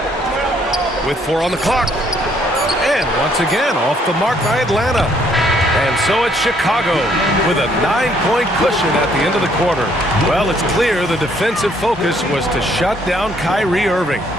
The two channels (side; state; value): both; normal; correlation 0.66